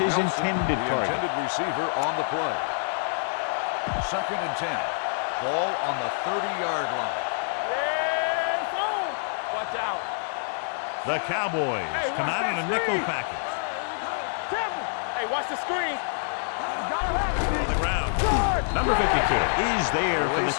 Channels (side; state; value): right; silent; 60 dB below the other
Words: intended target. Intended receiver on the play. 2nd and 10. Ball on the 30-yard line. Yes, on. Watch out. The Cowboys come out in a nickel package. Here we go. Careful. Hey, watch the screen. On the ground. Number 52 is there for the